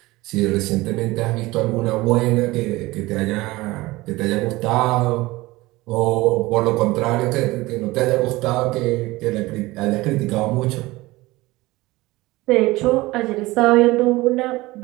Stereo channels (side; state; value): left; quieter; 20.2 dB